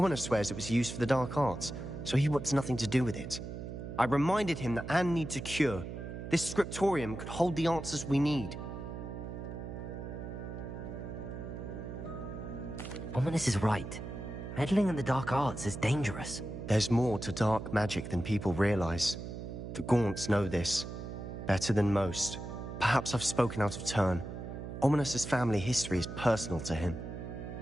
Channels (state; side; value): noise; right; hum, 8 dB below the sound